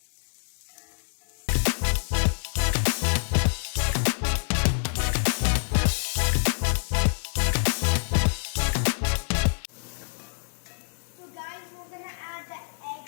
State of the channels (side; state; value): right; silent; digital silence